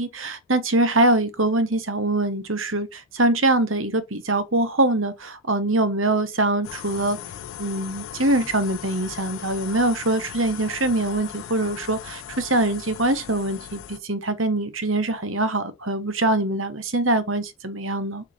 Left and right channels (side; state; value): both; normal; correlation 0.03